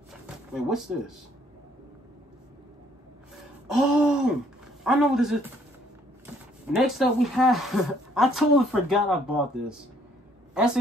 Wait, what's this? Oh, I know what this is. Next up, we have... I totally forgot I bought this.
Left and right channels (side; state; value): both; normal; correlation 0.64